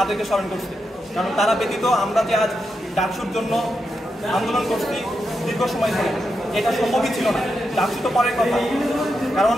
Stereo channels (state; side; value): normal; both; correlation 0.85